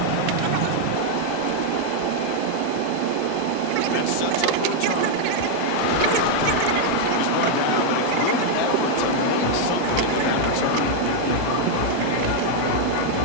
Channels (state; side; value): different; both; correlation 0.00